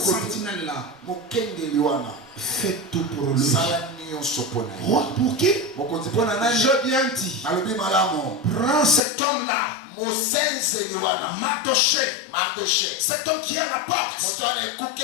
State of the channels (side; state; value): right; drops out; at 9.0 s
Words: sentinelle-là. Mokengeli wana. Fais tout pour lui. Sala nyonso pona yo. Roi, pour qui? Mokonzi pona nani? Je viens dit. Alobi malamu. Prends cet homme-là. Mosenzeli wana. Mardoché. Mardoché. Cet homme qui est à la porte. Moto ana